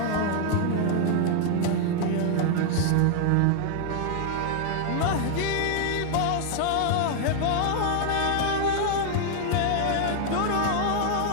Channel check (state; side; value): different; both; correlation 0.00